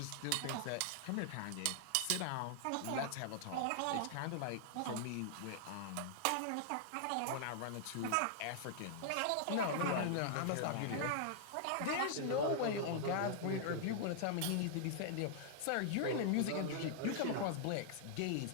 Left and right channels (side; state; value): both; different; correlation -0.01